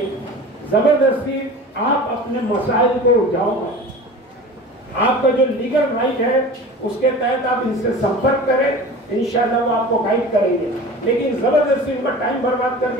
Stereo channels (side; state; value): both; normal; correlation 0.37